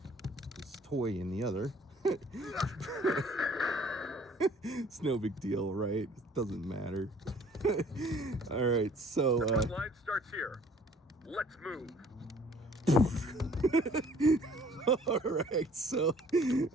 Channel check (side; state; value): both; normal; correlation 0.55